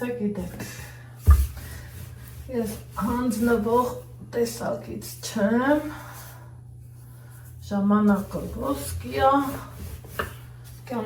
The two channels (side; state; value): both; identical; correlation 1.00